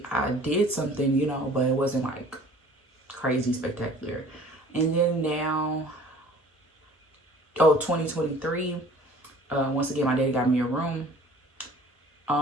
did something, you know, but it wasn't like crazy spectacular. And then now, 2023, once again, my daddy got me a room,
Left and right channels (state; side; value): normal; both; correlation 0.49